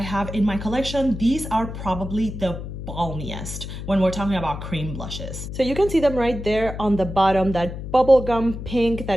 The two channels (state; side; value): noise; left; hum, 8 dB below the sound